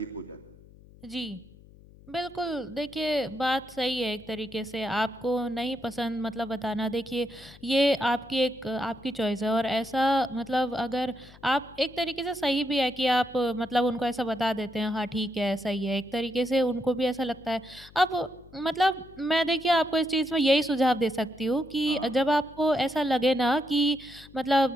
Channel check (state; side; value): noise; left; hum, 23 dB below the sound